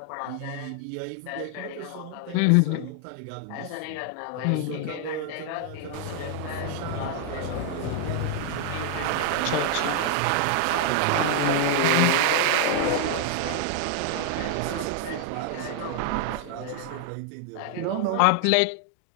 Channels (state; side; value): different; both; correlation 0.00